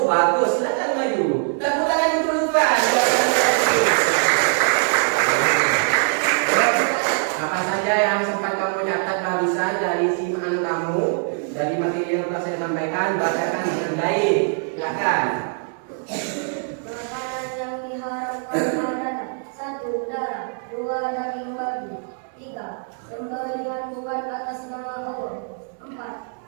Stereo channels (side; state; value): left; silent; 55 dB below the other